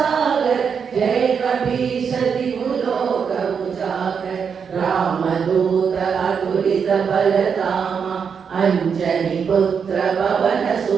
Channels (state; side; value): quieter; left; 6.6 dB